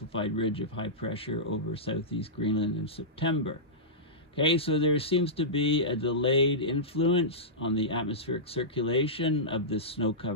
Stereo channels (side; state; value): both; normal; correlation -0.15